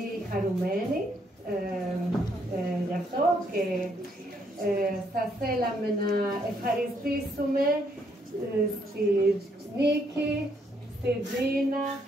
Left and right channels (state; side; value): normal; both; correlation 0.72